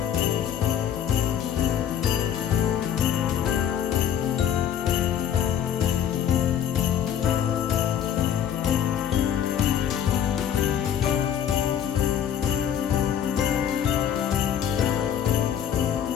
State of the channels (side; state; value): right; quieter; 9.2 dB